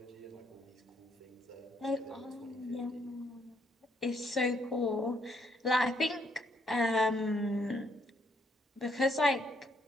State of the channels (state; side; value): normal; both; correlation 0.71